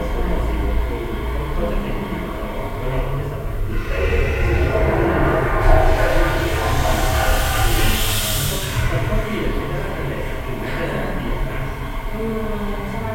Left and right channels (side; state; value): both; identical; correlation 1.00